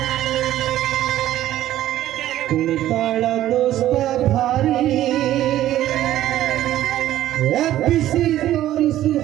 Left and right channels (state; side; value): quieter; left; 13.4 dB